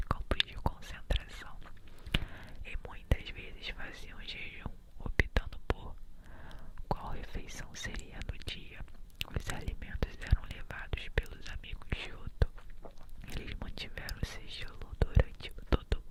campos de concentração e muitas vezes faziam jejum, optando por qual refeição seria no dia. Os alimentos eram levados pelos amigos de Otto. Eles mantiveram o sigilo durante todo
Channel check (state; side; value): identical; both; correlation 1.00